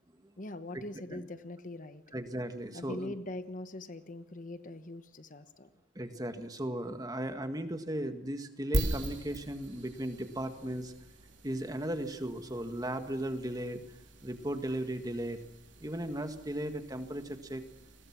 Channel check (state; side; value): normal; both; correlation 0.77